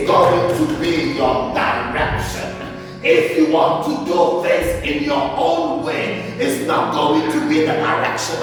going to be your direction. If you want to do things in your own way, it's not going to be the direction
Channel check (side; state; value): both; identical; correlation 1.00